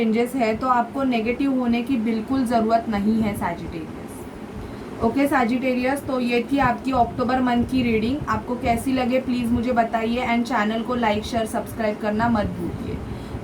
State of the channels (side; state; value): both; identical; correlation 1.00